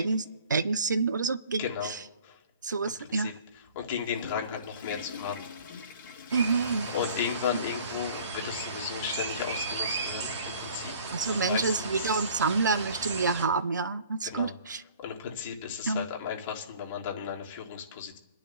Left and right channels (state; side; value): inverted; both; correlation -0.50